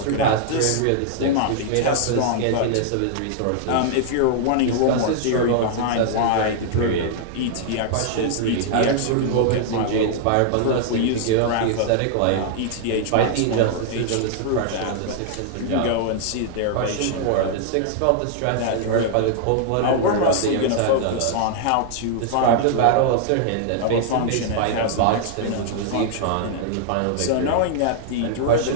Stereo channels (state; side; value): different; both; correlation -0.01